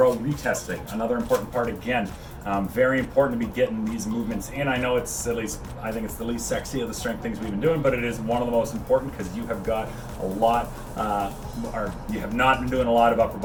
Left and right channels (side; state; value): both; identical; correlation 1.00